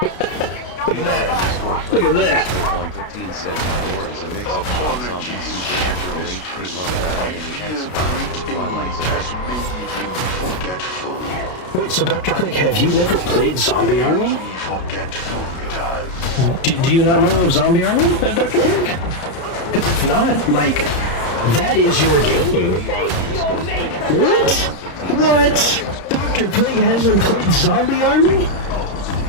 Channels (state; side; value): late; right; 33 ms